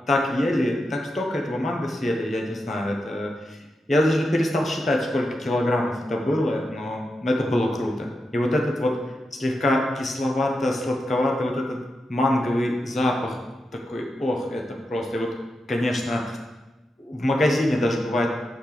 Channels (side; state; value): both; normal; correlation 0.87